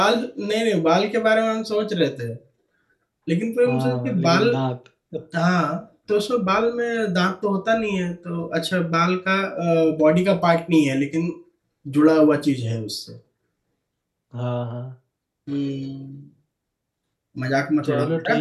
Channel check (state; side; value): identical; both; correlation 1.00